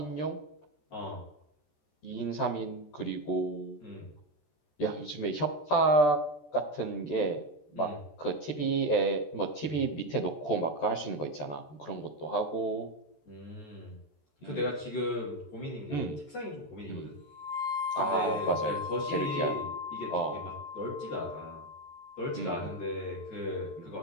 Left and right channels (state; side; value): late; right; 14 ms